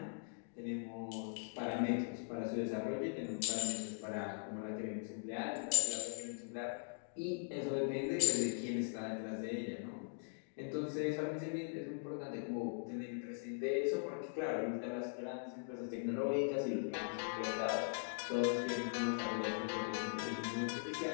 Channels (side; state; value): right; silent; digital silence